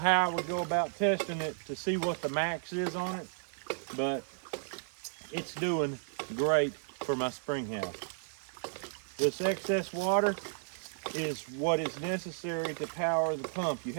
I would go about testing it to see what the max is on it, but it's doing great for my spring house. This excess water is what is necessary to power the pump. You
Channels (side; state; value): left; silent; digital silence